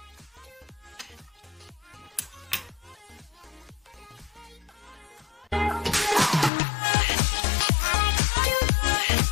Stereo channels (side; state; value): right; drops out; at 6.5 s